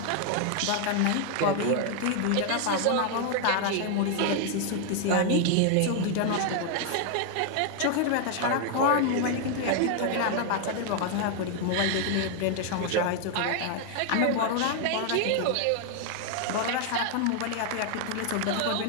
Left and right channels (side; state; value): both; different; correlation 0.00